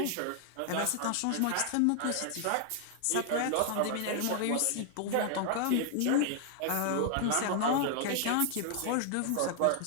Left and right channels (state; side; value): different; both; correlation 0.00